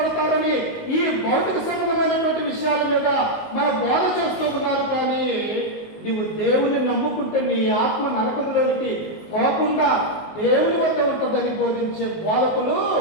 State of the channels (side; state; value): right; late; 19 ms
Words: ఈ భౌతిక సంబంధమైనటువంటి విషయాల మీద మన బోధ చేస్తూ ఉన్నారు. కానీ నీవు దేవుని నమ్ముకుంటే నీ ఆత్మ నరకంలోనికి పోకుండా దేవుని వద్ద ఉంటుందని బోధించే బోధకులు